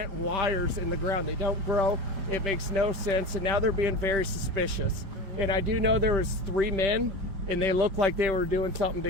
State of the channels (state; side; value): late; left; 5.1 ms